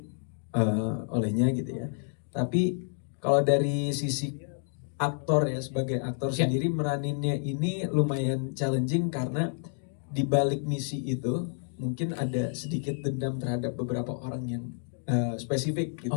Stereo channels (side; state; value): right; silent; digital silence